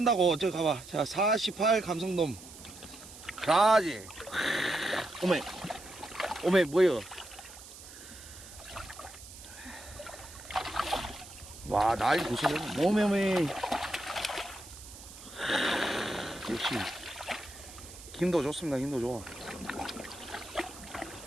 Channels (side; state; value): right; noise; hiss, 16 dB below the sound